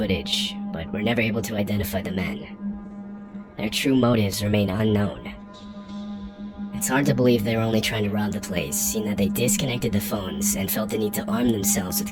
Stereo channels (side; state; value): both; identical; correlation 1.00